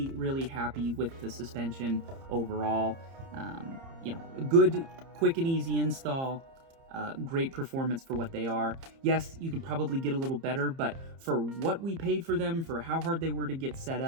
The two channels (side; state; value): left; late; 30 ms